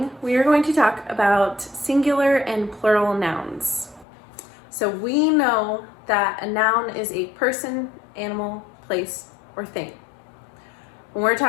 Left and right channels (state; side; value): drops out; right; at 4.0 s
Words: we are going to talk about singular and plural nouns. So we know that a noun is a person, animal, place, or thing. When we're